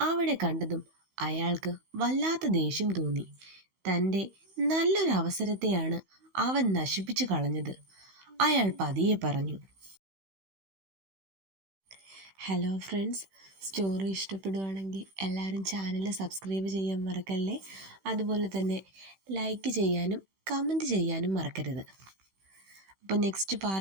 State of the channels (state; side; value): late; left; 16 ms